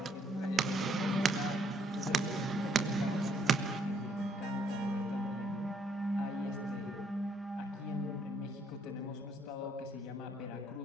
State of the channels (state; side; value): normal; both; correlation 0.68